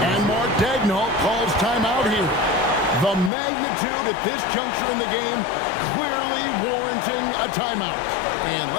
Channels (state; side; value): drops out; right; at 3.3 s